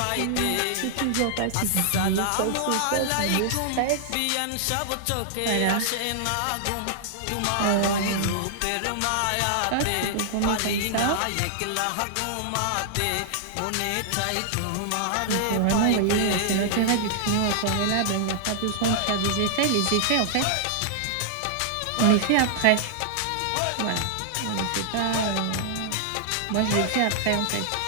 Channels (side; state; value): both; different; correlation -0.01